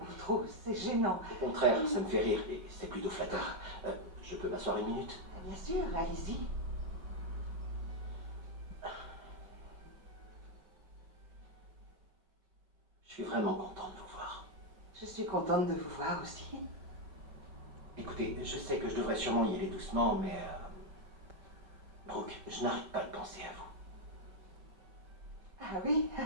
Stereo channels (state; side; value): late; left; 5.2 ms